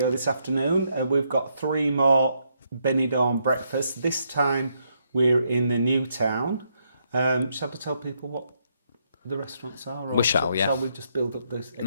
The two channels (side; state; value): both; inverted; correlation -0.76